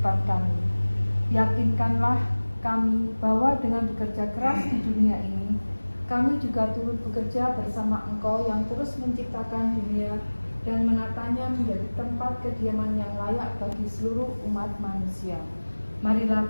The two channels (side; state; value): both; inverted; correlation -1.00